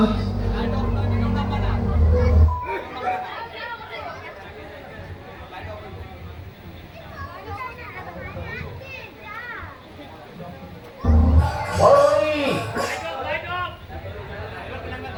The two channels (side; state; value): both; identical; correlation 1.00